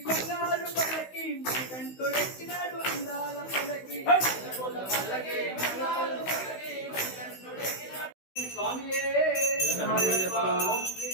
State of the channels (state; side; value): late; right; 16 ms